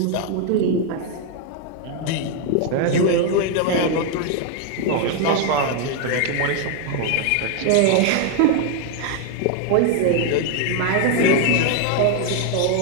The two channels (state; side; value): different; both; correlation 0.01